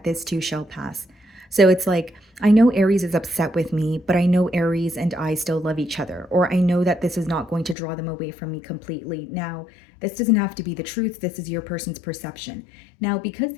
this too shall pass. So it's like, I know Aries is upset with me, but I know Aries and I still love each other, or I know that this is not going to draw them away from me completely. Now, this doesn't have to be the truth. This is your person's perception. Now, because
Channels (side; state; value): right; drops out; at 7.8 s